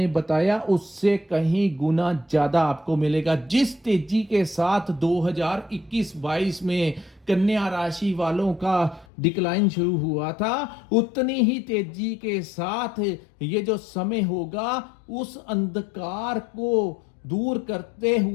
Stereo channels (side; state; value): right; drops out; at 9.1 s